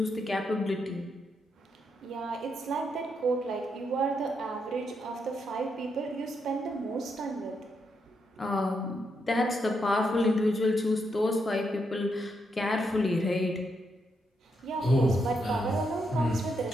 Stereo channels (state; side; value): normal; both; correlation 0.80